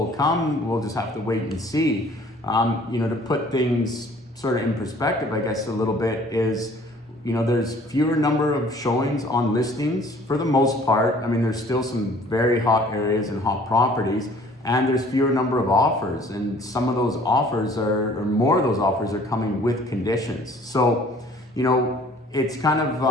come, we'll just have to wait and see. To put things sort of in perspective, I guess a little bit is, there's fewer number of showings on listings for the most part. I mean, there's still some very hot areas and hot properties, and there's fewer number of offers, and some of those offers or more of those offers are coming with conditions. So, it's kind of,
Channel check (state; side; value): normal; both; correlation 0.54